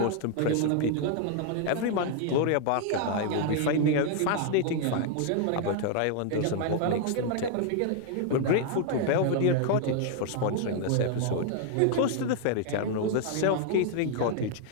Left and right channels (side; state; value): both; different; correlation 0.00